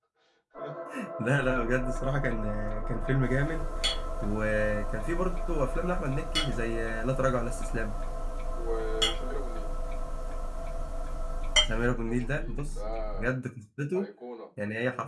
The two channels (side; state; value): both; identical; correlation 1.00